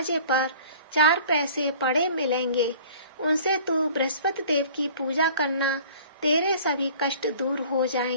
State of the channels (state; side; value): inverted; both; correlation -0.47